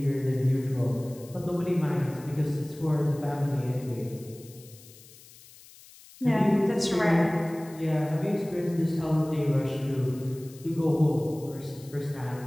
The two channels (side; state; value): left; noise; hiss, 22 dB below the sound